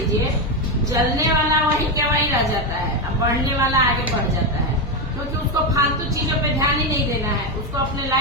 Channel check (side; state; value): both; normal; correlation 0.09